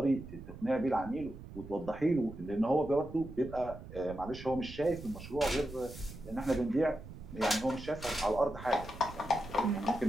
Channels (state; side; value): noise; right; rumble, 14 dB below the sound